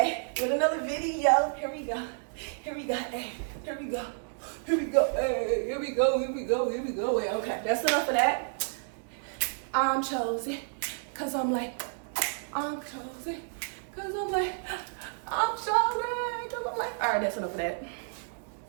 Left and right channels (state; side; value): silent; left; digital silence